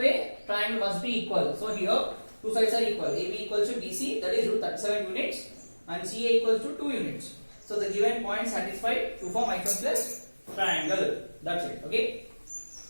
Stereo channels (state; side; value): inverted; both; correlation -1.00